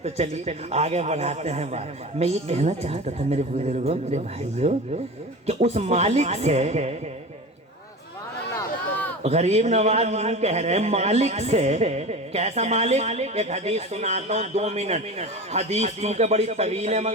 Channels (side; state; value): both; normal; correlation 0.31